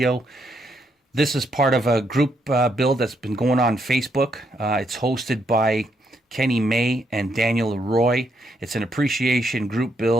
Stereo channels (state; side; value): normal; both; correlation 0.76